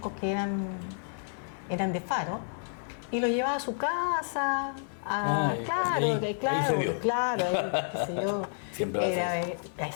que eran de Faro y lo llevaba a su casa. Claro, ahí claro, se dio. claro, ahí, qué sé yo. Siempre va a ser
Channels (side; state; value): right; silent; 58 dB below the other